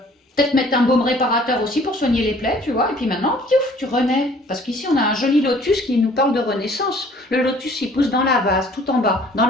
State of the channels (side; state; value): both; normal; correlation 0.54